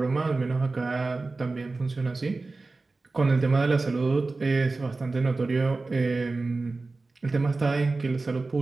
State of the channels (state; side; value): quieter; left; 3.6 dB